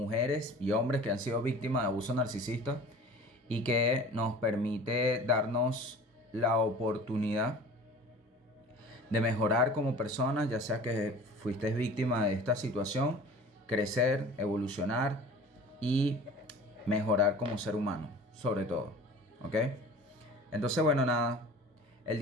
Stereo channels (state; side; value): normal; both; correlation 0.42